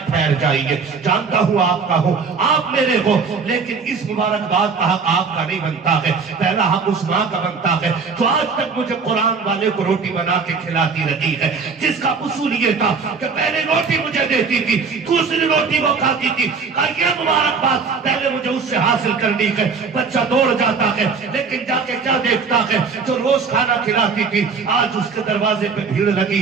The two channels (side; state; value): left; quieter; 5.2 dB